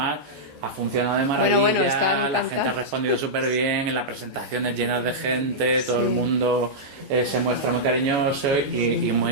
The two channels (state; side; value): late; left; 14 ms